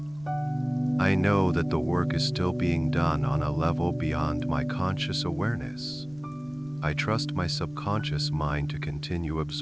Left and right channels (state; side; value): noise; right; rumble, 24 dB below the sound